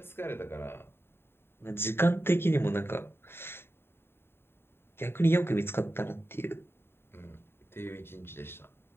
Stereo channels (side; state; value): right; late; 0.11 ms